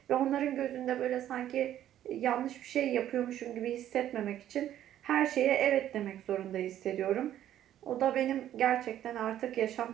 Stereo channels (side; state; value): left; quieter; 11.7 dB